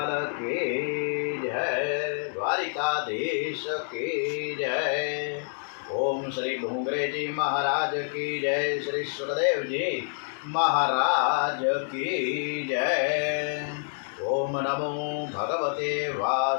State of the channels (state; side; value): silent; right; digital silence